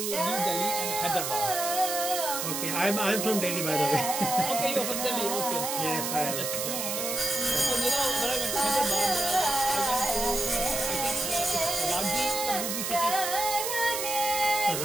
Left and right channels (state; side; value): noise; right; hiss, 2 dB below the sound